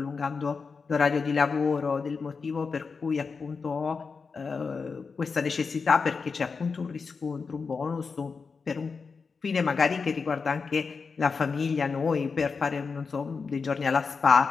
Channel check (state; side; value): quieter; right; 5.0 dB